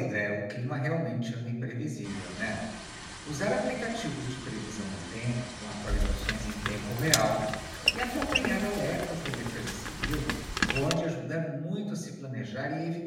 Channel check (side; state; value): both; identical; correlation 1.00